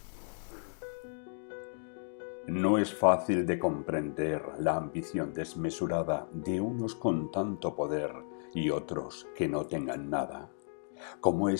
No es fácil de comprender la ambición desmesurada de unos con tanto poder y otros que no tengan nada. ¿Cómo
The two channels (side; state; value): right; silent; digital silence